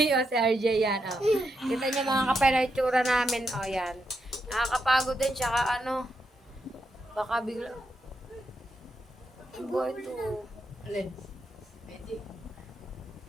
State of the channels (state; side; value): normal; both; correlation 0.83